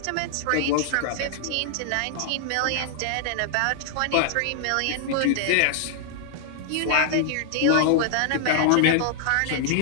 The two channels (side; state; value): both; different; correlation -0.01